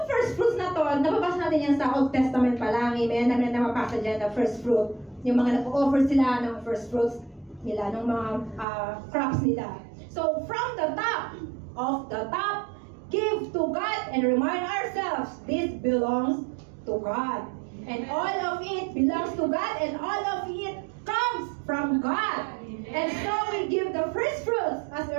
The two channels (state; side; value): drops out; left; at 8.7 s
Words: first fruits na to, nababasa natin yan sa Old Testament pa lang. Amen? Namin na mapasa dyan na first fruit. Yung mga nag-offer sila ng first fruits nila, ng mga crops nila. So, from the top of the top, give to God and remind ourselves, this belongs to God. And all of it belongs to God, and all of it comes from God. And so we give the first fruits as